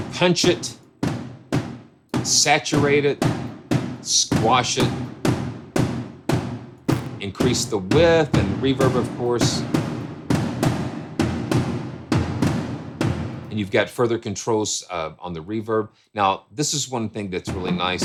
punch it, saturate it, squash it, increase the width and reverb, of course. And you've got further controls on the reverb. Now, this is one thing that's really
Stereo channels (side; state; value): both; identical; correlation 1.00